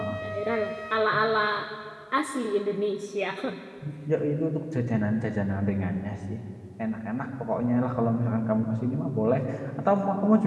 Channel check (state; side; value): identical; both; correlation 1.00